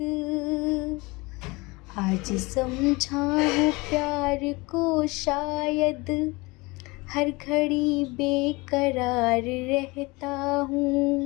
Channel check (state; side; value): quieter; right; 24.4 dB